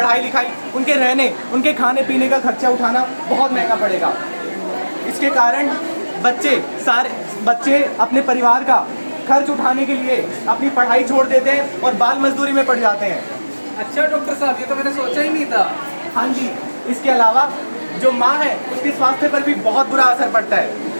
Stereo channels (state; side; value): inverted; both; correlation -1.00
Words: लिखाई, उनके रहने, उनके खाने पीने का खर्चा उठाना बहुत महंगा पड़ेगा। इसके कारण बच्चे अपने परिवार का खर्च उठाने के लिए अपनी पढ़ाई छोड़ देते हैं और बाल मजदूरी में पड़ जाते हैं। अच्छा डॉक्टर साहब, ये तो मैंने सोचा ही नहीं था। हाँ जी, इसके अलावा जो माँ है उसके स्वास्थ्य पर भी बहुत बुरा असर पड़ता है।